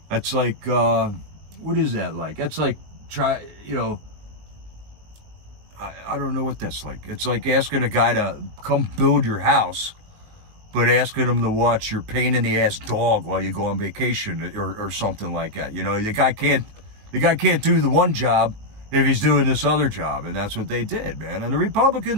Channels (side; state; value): left; late; 19 ms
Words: That's like, what is that like? That's like, I don't know what that's like. It's like asking a guy to come build your house, but asking him to watch your pain in the ass dog while you go on vacation or something like that. You know, the guy can't do the one job if he's doing this other job. And that's what they did, man. And the